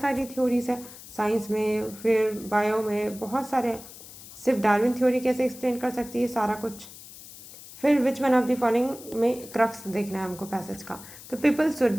सारी थ्योरीज है साइंस में, फिर बायो में बहुत सारे, सिर्फ डार्विन थ्योरी कैसे एक्सप्लेन कर सकती है सारा कुछ। फिर which one of the following में क्रक्स देखना है हमको पैसेज का। तो people should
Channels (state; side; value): noise; left; hiss, 17 dB below the sound